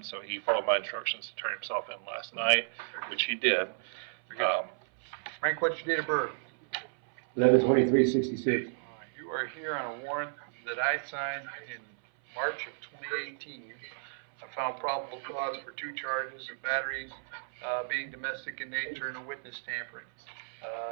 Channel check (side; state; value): left; silent; 56 dB below the other